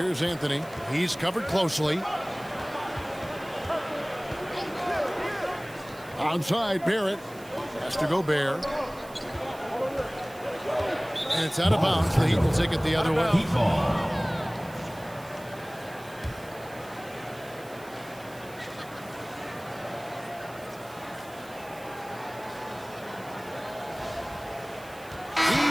Anthony. He's covered closely. Outside, Barrett. Has to go Gobert. And it's out of bounds. The Heat will take it the other way. Heat ball.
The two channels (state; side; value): noise; right; hiss, 21 dB below the sound